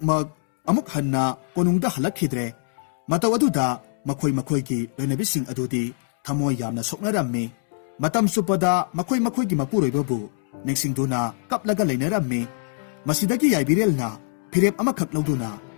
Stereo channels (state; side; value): silent; right; 63 dB below the other